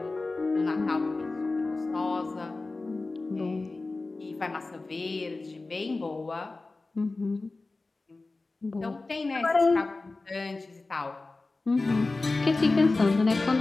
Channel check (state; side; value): quieter; right; 3.4 dB